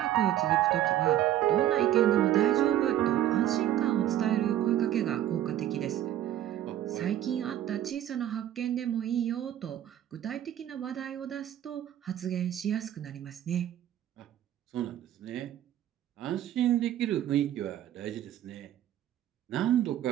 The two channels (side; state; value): left; quieter; 12.1 dB